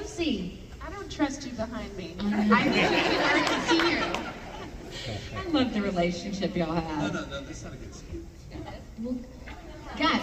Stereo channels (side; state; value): both; identical; correlation 1.00